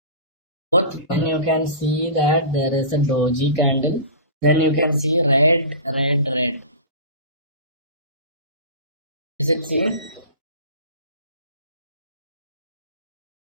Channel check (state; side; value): inverted; both; correlation -0.34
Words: then you can see that there is a doji candle. Then you can see red, red, red. Is it seen?